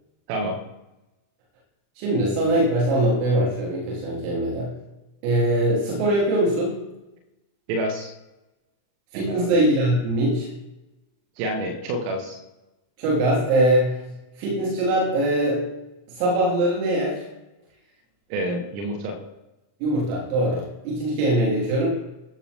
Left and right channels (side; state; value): left; late; 40 ms